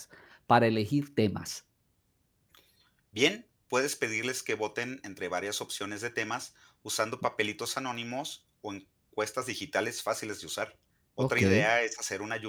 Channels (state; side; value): identical; both; correlation 1.00